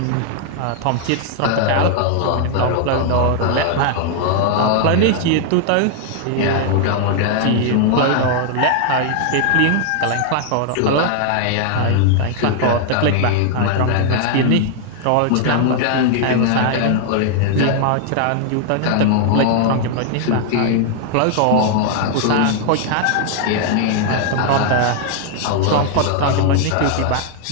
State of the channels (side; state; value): both; different; correlation 0.00